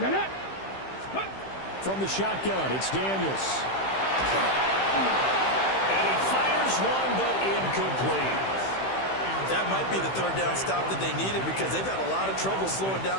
From the shotgun, it's Daniels. And he fires one, but incomplete. That might be the 3rd down stop that they needed because they've had a lot of trouble slowing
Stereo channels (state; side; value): late; right; 15 ms